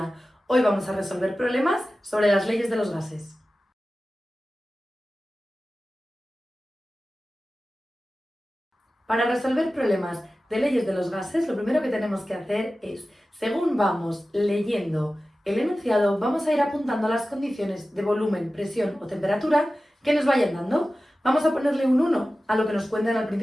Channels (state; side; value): normal; both; correlation 0.95